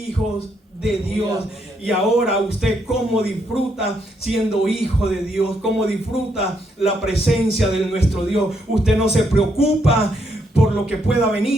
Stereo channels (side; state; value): both; normal; correlation 0.76